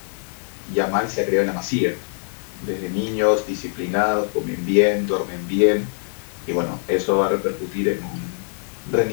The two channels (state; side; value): silent; right; digital silence